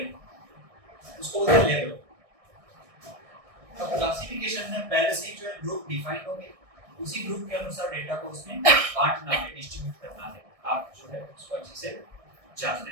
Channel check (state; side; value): late; left; 1.6 ms